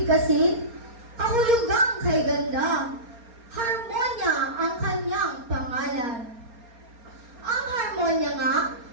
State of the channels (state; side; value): late; left; 4.3 ms